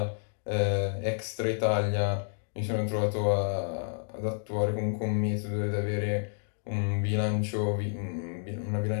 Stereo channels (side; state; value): right; silent; digital silence